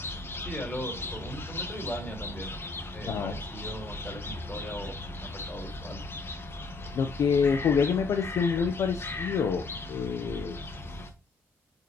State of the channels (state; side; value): quieter; right; 4.5 dB